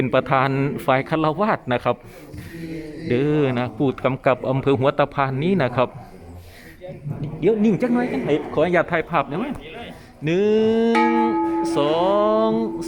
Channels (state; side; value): identical; both; correlation 1.00